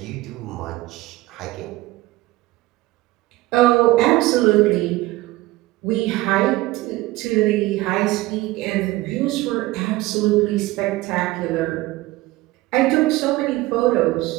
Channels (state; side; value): quieter; left; 18.9 dB